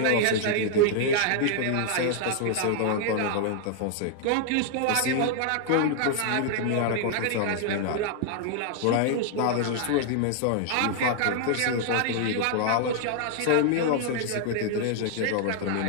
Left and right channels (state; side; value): different; both; correlation 0.00